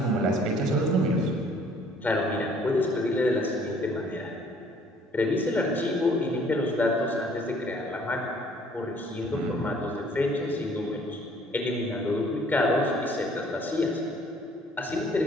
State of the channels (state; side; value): normal; both; correlation 0.58